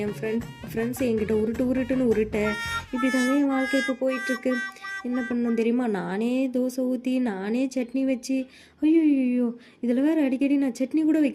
என் ஃப்ரெண்ட்ஸ் என்கிட்ட உருட்டுன்னு உருட்ட, இப்படி தாங்க என் வாழ்க்கை இப்போ போயிட்டுருக்கு. என்ன பண்ணணும் தெரியுமா? நானே தோசை ஊற்றி நானே சட்னி வச்சு, ஐயோ இதில் வேறு அடிக்கடி நான் சட்னி கூட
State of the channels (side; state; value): both; identical; correlation 1.00